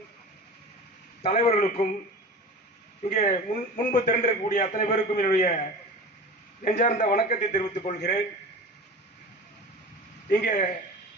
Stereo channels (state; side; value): normal; both; correlation 0.34